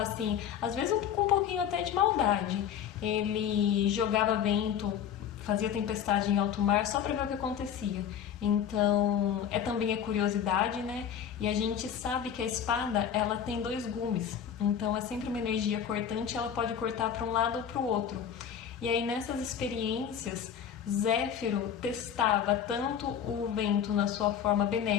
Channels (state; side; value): quieter; right; 8.6 dB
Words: assim, às vezes com um pouquinho até de maldade. Ele jogava vento, fazia tempestade em alto mar só para ver o que acontecia. Então, também a curiosidade, né? E a gente sabe que a espada, ela tem 2 gumes. Então, é sempre uma energia cortante, ela pode cortar para um lado ou para o outro. E aí, nessas experiências, Zéfiro testava tanto o vento na sua forma